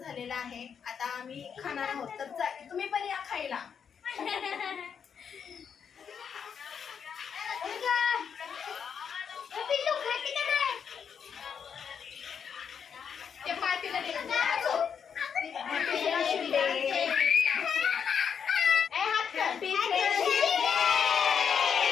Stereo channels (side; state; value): right; quieter; 7.2 dB